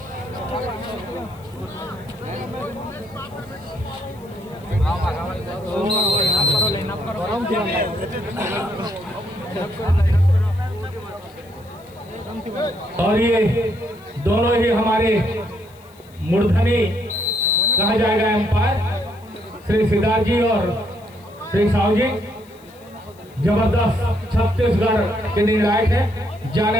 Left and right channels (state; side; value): noise; left; hiss, 28 dB below the sound